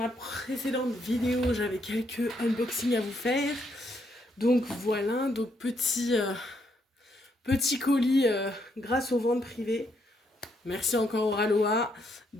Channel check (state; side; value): normal; both; correlation 0.75